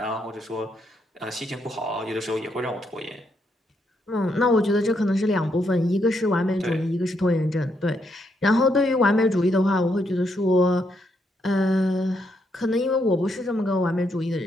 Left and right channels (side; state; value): both; normal; correlation 0.77